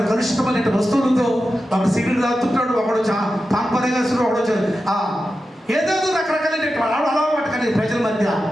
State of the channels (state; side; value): normal; both; correlation 0.91